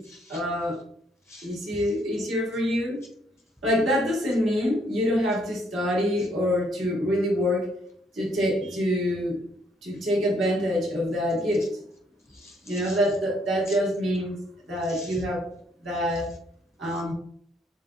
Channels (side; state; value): both; normal; correlation 0.69